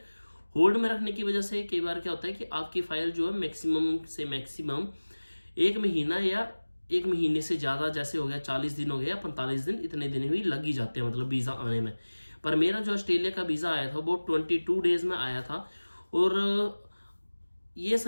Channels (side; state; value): both; inverted; correlation -1.00